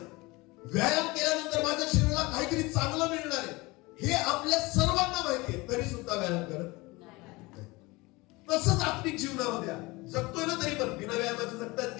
व्यायाम केल्यानंतर माझ्या शरीराला काहीतरी चांगलं मिळणार आहे. हे आपल्या सर्वांना माहिती आहे, तरी सुद्धा व्यायाम करत नाही. तसंच आत्मिक जीवनामध्ये जगतोय ना, तरी पण बिना व्यायामाचे जगतात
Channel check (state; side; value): quieter; right; 23.0 dB